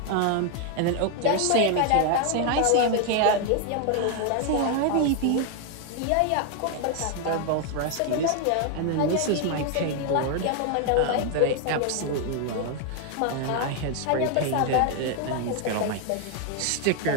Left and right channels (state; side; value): different; both; correlation 0.00